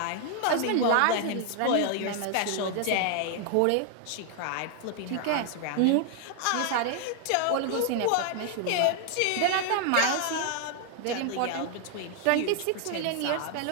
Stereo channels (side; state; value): both; different; correlation 0.00